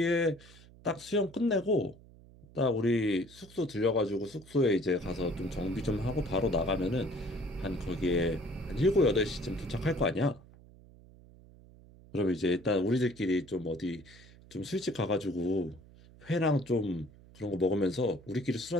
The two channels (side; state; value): right; noise; hum, 23 dB below the sound